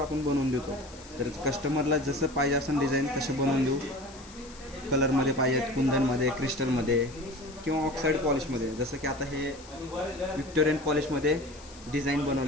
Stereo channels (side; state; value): left; noise; hiss, 20 dB below the sound